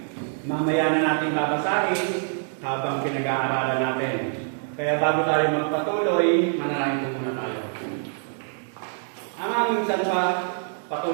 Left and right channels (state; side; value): silent; left; 62 dB below the other